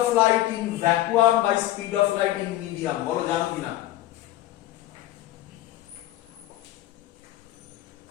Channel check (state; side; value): quieter; right; 14.7 dB